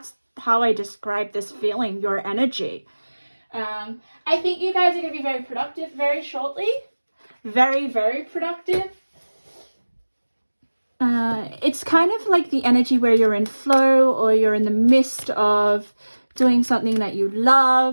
how I describe this feeling, your energy. I think you guys are going to be very productive very shortly. Very, very productive. It's kind of like the energy where you're in flow, or you're in the midst of doing something that you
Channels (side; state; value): both; inverted; correlation -1.00